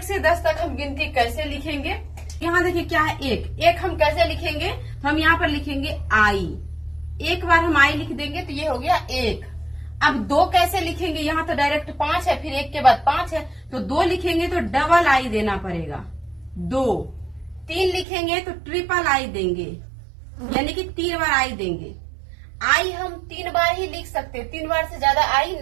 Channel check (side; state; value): left; drops out; at 18.1 s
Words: से 10 तक हम गिनती कैसे लिखेंगे। यहाँ देखिए क्या है 1 हम कैसे लिखेंगे, तो हम यहाँ पर लिखेंगे आई। एक बार हम आई लिख देंगे तो ये हो गया 1। अब 2 कैसे लिखेंगे, यहाँ तो डायरेक्ट 5 है, फिर 1 के बाद 5 है, तो 2 लिखेंगे तो डबल आई देना पड़ेगा 2। 3 लिखेंगे तो ट्रिपल आई देंगे, यानी कि 3 बार आई देंगे। आई हम 3 बार ही लिख सकते हैं, 3 बार से ज्यादा आई